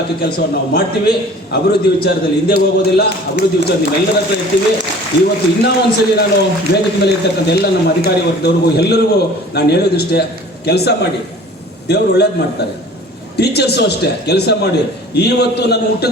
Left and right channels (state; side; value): normal; both; correlation 0.46